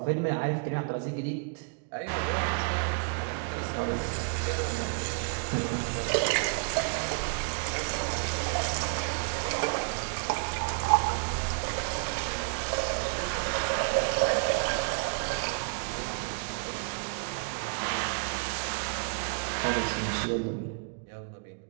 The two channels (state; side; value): quieter; left; 39.2 dB